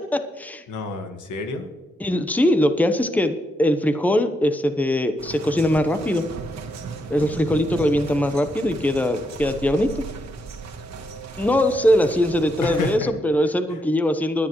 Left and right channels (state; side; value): normal; both; correlation 0.80